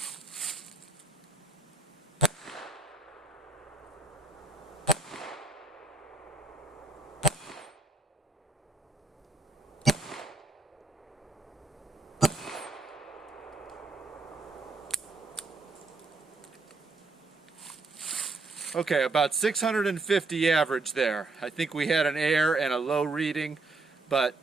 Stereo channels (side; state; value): left; quieter; 3.3 dB